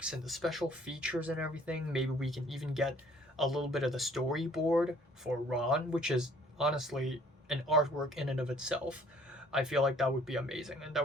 and the special features and everything, maybe we can even get a little bit of the storyboard for Ron, which is honestly an artwork in and of itself. I feel like that would be amazing, and that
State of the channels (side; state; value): both; normal; correlation 0.57